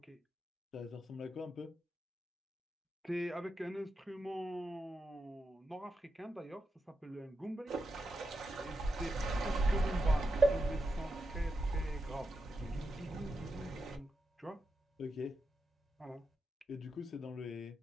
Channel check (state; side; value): normal; both; correlation 0.87